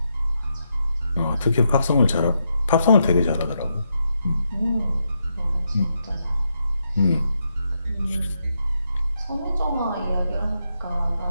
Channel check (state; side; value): inverted; both; correlation -0.81